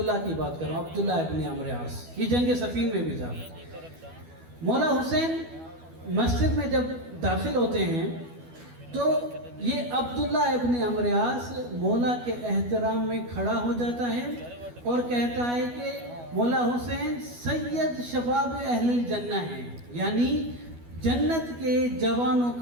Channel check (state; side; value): late; left; 12 ms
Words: کی بات کر رہا ہوں, عبداللہ ابن عمرو عاص. یہ جنگ صفین میں بھی تھا. مولا حسین مسجد میں جب داخل ہوتے ہیں تو یہ عبداللہ ابن عمرو عاص مولا کے احترام میں کھڑا ہو جاتا ہے اور کہتا ہے کہ مولا حسین سید شباب اہل الجنہ ہیں, یعنی جنت کے جوانوں